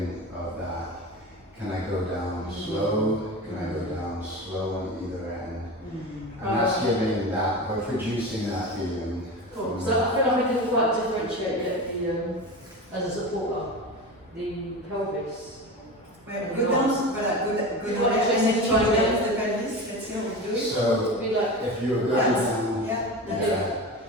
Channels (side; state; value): both; normal; correlation 0.28